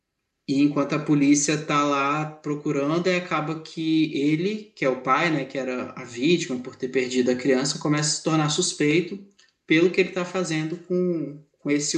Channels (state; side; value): identical; both; correlation 1.00